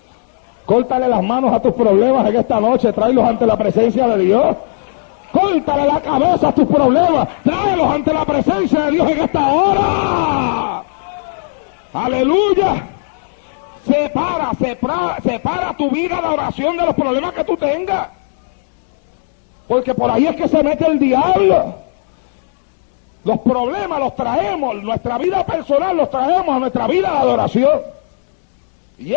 Córtale las manos a tus problemas en esta noche, tráelos ante la presencia de Dios. Córtale la cabeza a tus problemas, tráelos ante la presencia de Dios en esta hora. Aleluya. Separa tu vida de oración de los problemas que tú tengas, porque por ahí es que se mete el diablo. Los problemas los traemos, nuestra vida personal los traemos a nuestra vida de adoración, y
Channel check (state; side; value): silent; right; digital silence